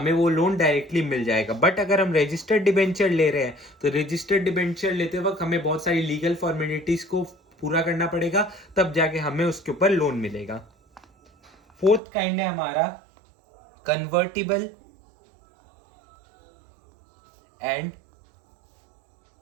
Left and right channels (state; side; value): drops out; left; at 12.0 s